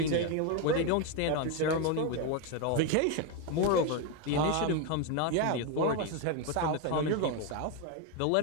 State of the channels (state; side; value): different; both; correlation 0.02